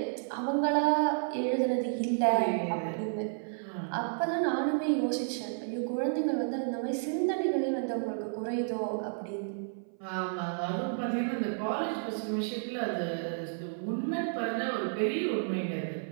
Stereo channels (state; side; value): silent; left; 57 dB below the other